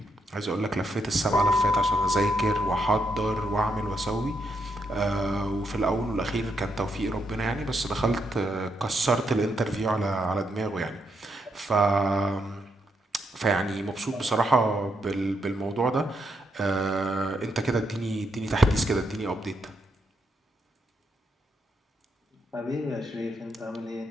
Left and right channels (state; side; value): normal; both; correlation 0.79